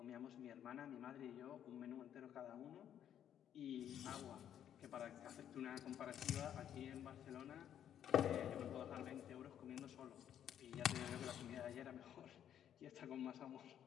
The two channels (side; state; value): right; quieter; 10.0 dB